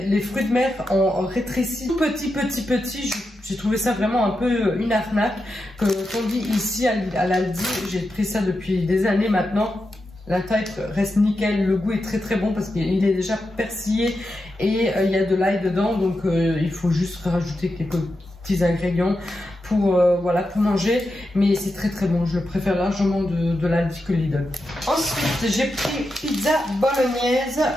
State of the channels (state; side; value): normal; both; correlation 0.88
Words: fruits de mer en rétréci petit. J'ai trouvé ça vraiment un peu une arnaque. Qu'on dit ici à l'Aldi, j'ai pris ça depuis des années maintenant. La taille reste nickel, le goût est très très bon parce qu'il est déjà persillé et il y a de l'ail dedans, donc il faut juste rajouter quelques petits ingrédients pour voilà, pour manger, mais c'est très très bon. Je préfère largement de l'Aldi que Lidl. Ensuite j'ai pris pizza